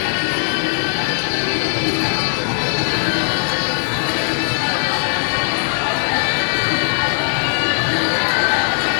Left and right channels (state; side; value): silent; right; 56 dB below the other